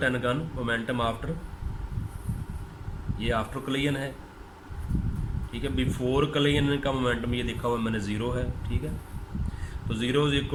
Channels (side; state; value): both; identical; correlation 1.00